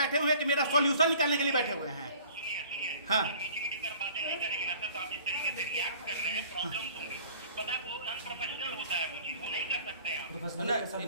हुए हैं कि मेरा सॉल्यूशन निकालने के लिए बैठे हुए हैं? सुनिए, हाँ, मीठी कर बातें नहीं करेंगे ना सर, आप जिस तरीके से रिएक्ट कर रहे हैं, प्रॉब्लम होंगी। पता है, वो अनप्रोफेशनल होता है, वो चीज वो नहीं कर सकते आप।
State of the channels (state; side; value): inverted; both; correlation -0.50